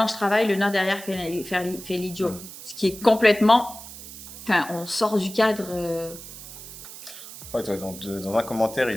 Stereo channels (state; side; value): noise; right; hiss, 14 dB below the sound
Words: travaille, le noir derrière fait l'idiot. Mm. Ce qui est complètement. Enfin, on sort du cadre. Ouais, dans un commentaire,